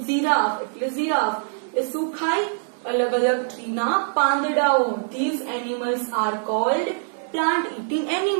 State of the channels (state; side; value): silent; left; digital silence